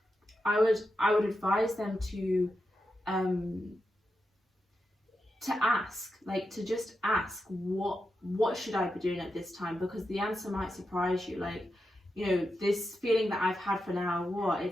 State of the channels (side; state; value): both; normal; correlation 0.88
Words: I would advise them to ask, like to just ask, what should I be doing at this time? Because the answer might surprise you. Like, this feeling that I've had for now,